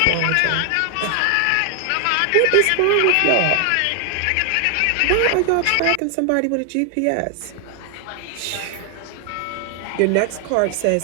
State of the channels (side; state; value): both; different; correlation 0.00